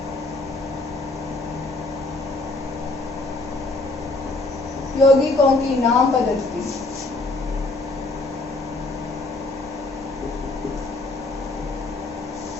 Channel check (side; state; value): right; quieter; 3.1 dB